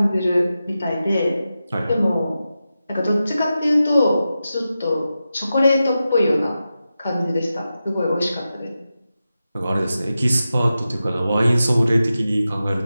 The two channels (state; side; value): inverted; both; correlation -0.92